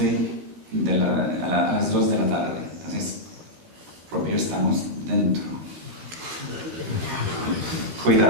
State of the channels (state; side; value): late; left; 13 ms